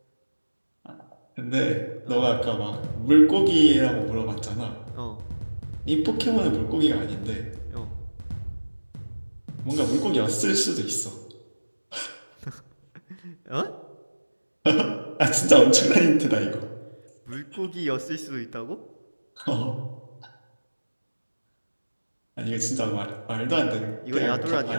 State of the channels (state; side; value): inverted; both; correlation -1.00